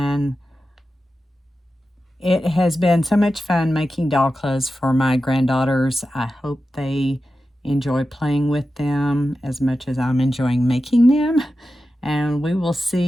it has been so much fun making doll clothes for my granddaughters. I hope they enjoy playing with them as much as I'm enjoying making them. And we will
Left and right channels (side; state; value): both; normal; correlation 0.92